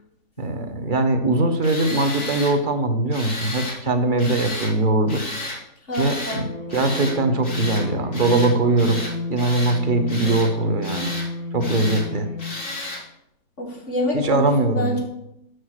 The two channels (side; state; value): right; late; 3.9 ms